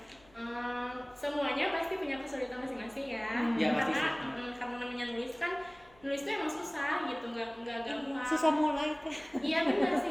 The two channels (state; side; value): noise; left; hum, 28 dB below the sound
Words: Semuanya pasti punya kesulitan masing-masing ya. Ya, pasti karena sih. karena namanya nulis itu emang susah gitu, nggak gampang. Susah mulai Teh. Iya benar sih,